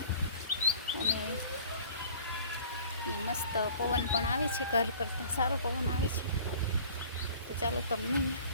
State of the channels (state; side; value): inverted; both; correlation -0.48